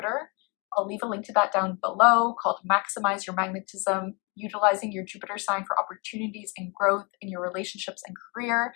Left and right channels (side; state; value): right; quieter; 31.3 dB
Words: I'll leave a link to that down below, called Maximize Your Magnetism, utilizing your Jupiter sign for opportunities and growth in your relationships and career.